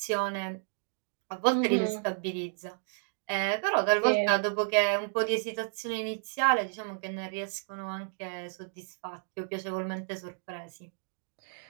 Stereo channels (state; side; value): silent; left; 57 dB below the other